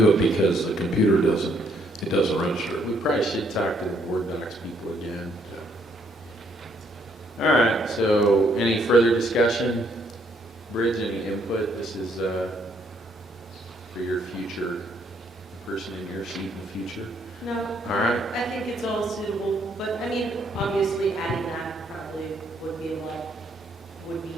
it, because the computer doesn't register. We probably should talk to the board docs people again. All right, so any further discussion? Bridge, any input? This is for your future person in your seat in the future. No, All right. I think it's all suitable, but I mean, obviously adding that probably would be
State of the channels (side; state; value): both; normal; correlation 0.69